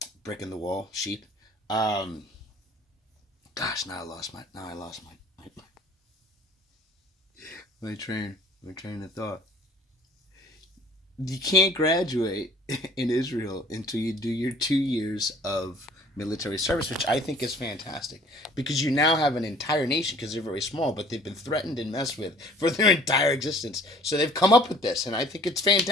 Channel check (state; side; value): normal; both; correlation 0.52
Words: Brick in the wall, sheep. Gosh, now I lost my my train. My train of thought. You can't graduate in Israel until you do your 2 years of military service, which I think is fantastic because you now have an entire nation because they're very small, but they've been threatened and messed with for their entire existence. So they've come up with this, and I think it's